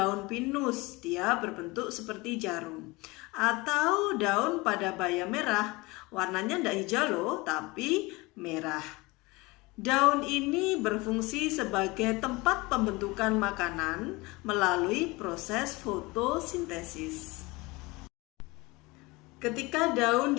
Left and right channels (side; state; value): right; quieter; 23.4 dB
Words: pinus, dia berbentuk seperti jarum. Atau daun padabaya merah, warnanya tidak hijau loh, tapi merah. Daun ini berfungsi sebagai tempat pembentukan makanan melalui proses fotosintesis. Ketika daun